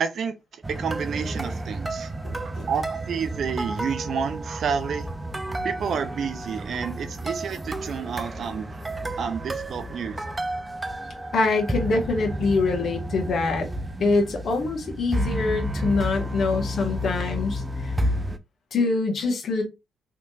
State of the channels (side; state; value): both; normal; correlation 0.76